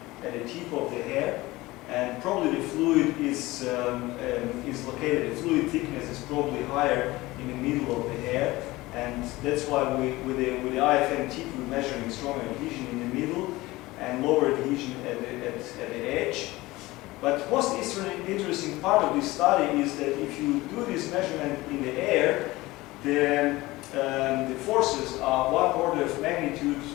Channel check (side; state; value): right; quieter; 19.7 dB